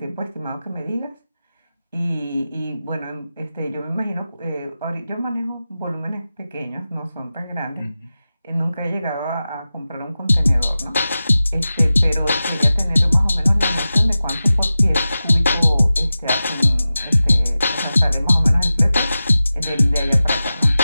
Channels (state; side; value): inverted; both; correlation -0.95